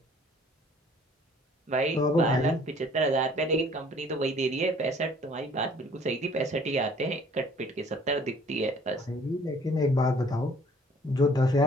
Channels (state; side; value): normal; both; correlation 0.56